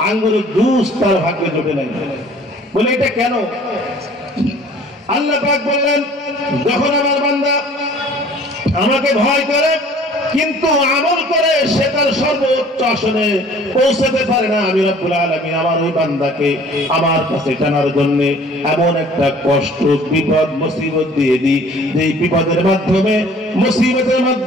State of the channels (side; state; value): both; normal; correlation 0.51